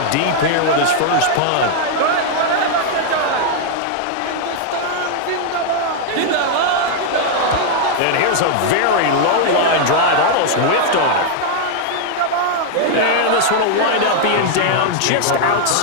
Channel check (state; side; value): different; both; correlation 0.00